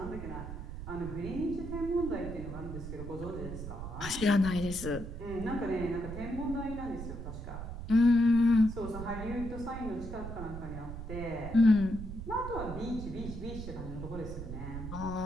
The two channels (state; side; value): noise; right; rumble, 8 dB below the sound